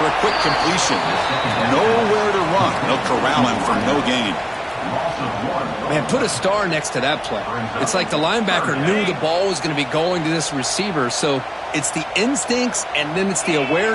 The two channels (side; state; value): both; identical; correlation 1.00